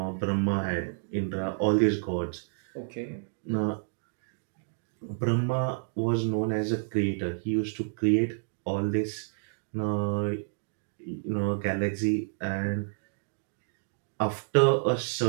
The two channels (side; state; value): left; silent; digital silence